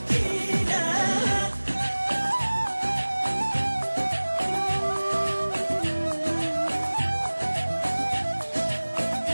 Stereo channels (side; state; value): both; inverted; correlation -1.00